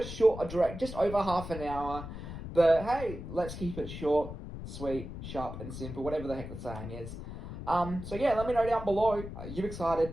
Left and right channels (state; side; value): noise; left; rumble, 9 dB below the sound